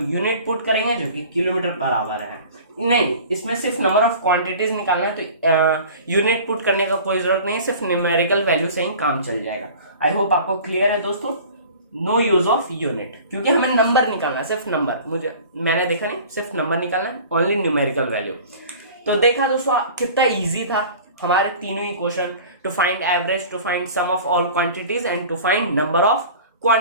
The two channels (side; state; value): both; inverted; correlation -0.42